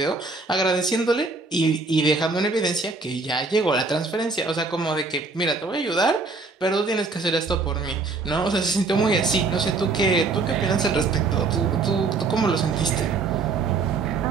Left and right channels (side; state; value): left; quieter; 4.0 dB